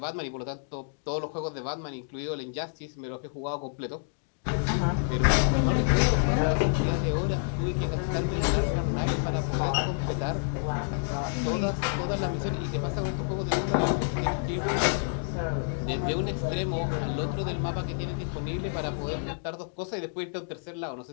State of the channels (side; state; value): right; silent; digital silence